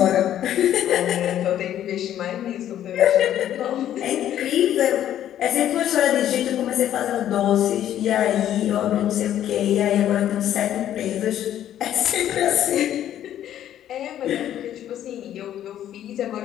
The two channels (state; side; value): quieter; right; 11.3 dB